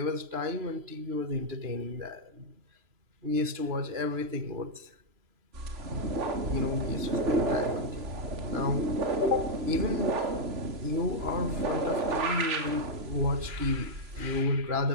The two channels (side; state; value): left; late; 3.0 ms